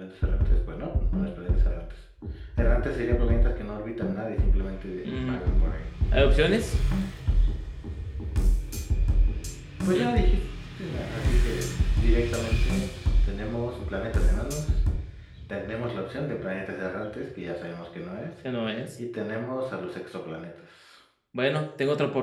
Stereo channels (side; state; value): both; identical; correlation 1.00